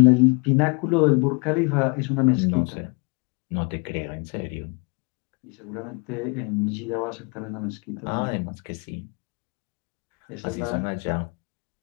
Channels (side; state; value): right; quieter; 32.4 dB